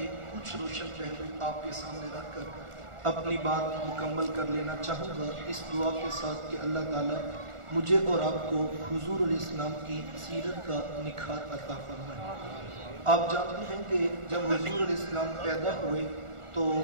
کچھ روشن پہلو آپ کے سامنے رکھ کر اپنی بات مکمل کر لینا چاہوں گا، اس دعا کے ساتھ کہ اللہ تعالیٰ مجھے اور آپ کو حضور علیہ السلام کی سیرت کا نکھار عطا فرمائے۔ آپ جانتے ہیں کہ جب حضور علیہ السلام پیدا ہوئے تو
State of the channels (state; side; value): late; left; 1.4 ms